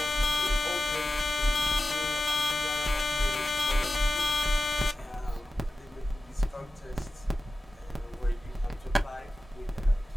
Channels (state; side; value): normal; both; correlation 0.95